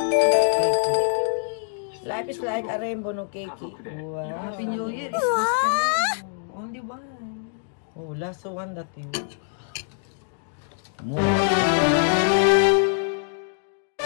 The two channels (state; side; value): silent; right; digital silence